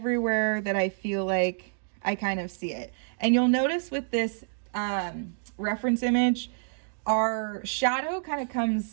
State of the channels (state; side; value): silent; left; digital silence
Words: that I feel like I kind of see it. And you'll notice with this reference image, our shadow kind of